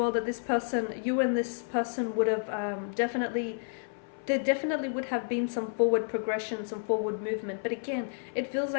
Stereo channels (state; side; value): silent; right; 57 dB below the other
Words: that this person, you and this person would have there definitely would have been some forward progression, some forward movement. But again, it feels